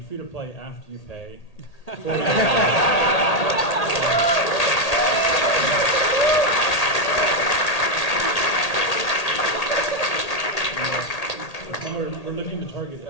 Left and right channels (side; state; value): right; late; 1.8 ms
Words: after you pay. We're looking to